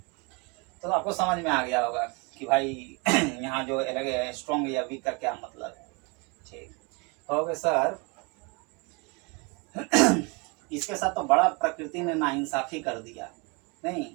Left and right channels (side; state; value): left; quieter; 29.3 dB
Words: तो आपको समझ में आ गया होगा कि भाई यहाँ जो स्ट्रॉन्ग या वीक का क्या मतलब है। ठीक हो गया सर। इसके साथ तो बड़ा प्रकृति ने नाइंसाफी कर दिया नहीं,